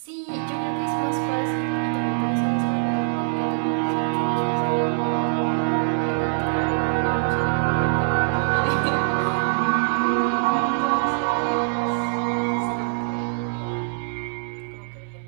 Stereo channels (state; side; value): silent; left; 63 dB below the other